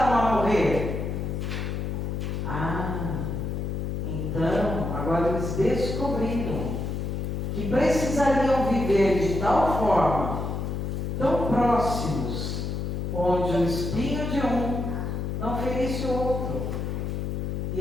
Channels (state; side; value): noise; left; hum, 2 dB below the sound